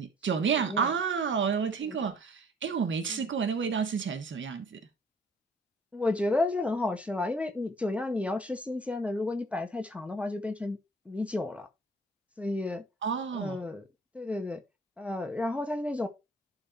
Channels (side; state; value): both; normal; correlation 0.54